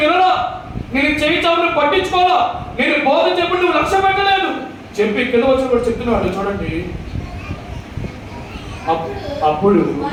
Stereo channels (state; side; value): identical; both; correlation 1.00